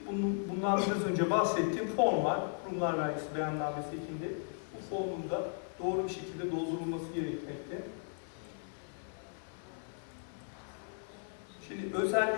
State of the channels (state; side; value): silent; right; 54 dB below the other